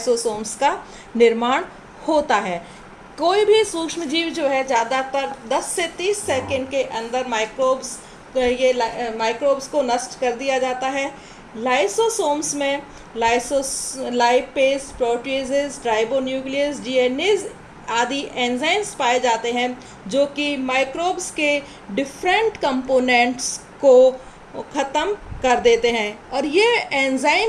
का निर्माण होता है। कोई भी सूक्ष्म जीव जो है ज़्यादातर 10 से 30 सेकंड के अंदर माइक्रोब्स को नष्ट कर दिया जाता है। लाइसोसोम्स में लाइपेज, प्रोटीजेज, राइबोन्यूक्लियस, डीएनएज आदि एंजाइम्स पाए जाते हैं जो कि माइक्रोब्स के डिफरेंट कंपोनेंट्स को ख़त्म कर देते हैं और ये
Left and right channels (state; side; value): identical; both; correlation 1.00